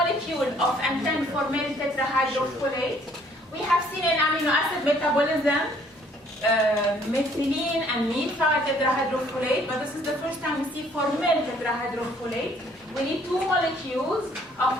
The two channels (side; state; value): both; normal; correlation 0.61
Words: of N10 formyl tetrahydrofolate. We have seen in amino acid metabolism methylene and methyl tetrahydrofolate, but this is the first time we see formyl tetrahydrofolate. We need 2 molecules of